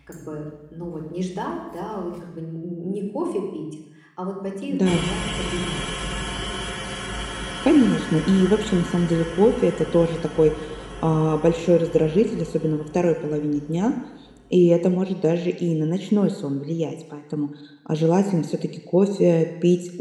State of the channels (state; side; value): identical; both; correlation 1.00